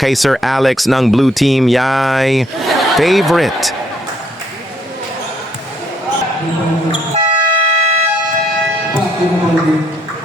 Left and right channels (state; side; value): normal; both; correlation 0.68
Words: Sir Alex ng Blue Team. Yay! Favorite!